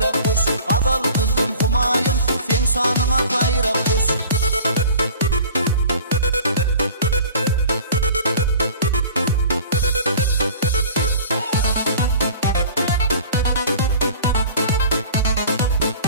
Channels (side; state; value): both; inverted; correlation -0.44